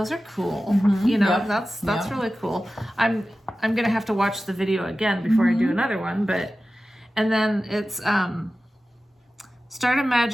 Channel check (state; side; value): normal; both; correlation 0.95